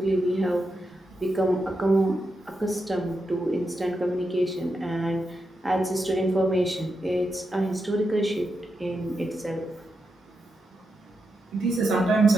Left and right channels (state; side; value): normal; both; correlation 0.86